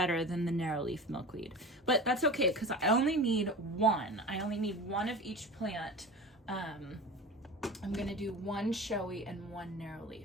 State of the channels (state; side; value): normal; both; correlation 0.34